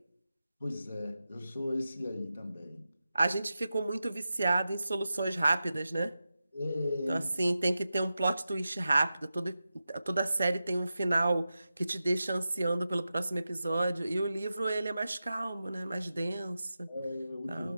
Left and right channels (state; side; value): inverted; both; correlation -0.92